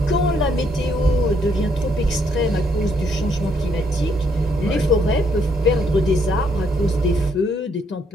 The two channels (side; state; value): both; normal; correlation 0.71